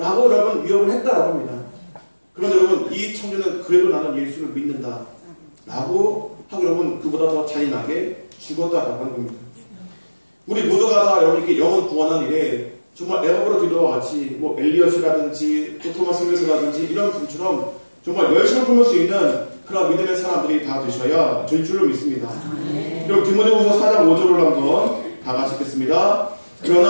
여러분 위협을 했다라고 합니다. 그런데 여러분, 이 청년은 그래도 나는 예수를 믿는다 라고 하고 여러분 그보다 더 잔인하게 죽었다라고 하는 겁니다. 우리 모두가 다 여러분 이렇게 영혼 구원한 일에 정말 에버브로 기도와 같이 뭐 엘리엇이라든지 또 토마스 선교사라든지 이런 분처럼 정말 열심을 품을 수 있는 그런 믿음의 사람들이 다 되셔야 될 줄로 믿습니다. 그럼 디모데후서 4장 5절을 한번 다 같이 읽겠습니다.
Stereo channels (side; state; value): both; inverted; correlation -1.00